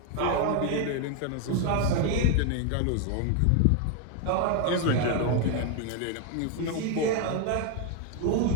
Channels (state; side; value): different; both; correlation 0.01